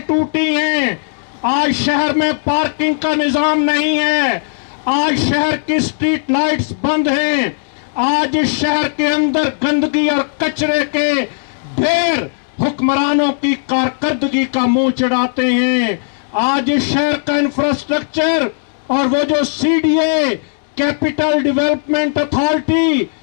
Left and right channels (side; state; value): right; silent; digital silence